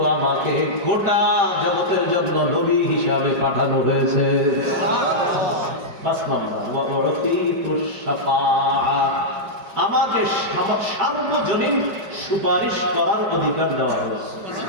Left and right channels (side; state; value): left; late; 5.1 ms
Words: আমাকে গোটা জগতের জন্য নবী হিসাবে পাঠানো হয়েছে। ৫ নম্বর, আমাকে সার্বজনীন সুপারিশ করার অধিকার দেওয়া হয়েছে।